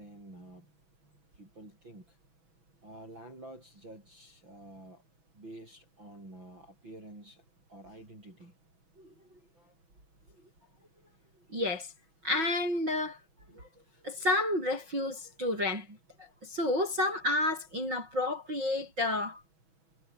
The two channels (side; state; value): left; late; 6.1 ms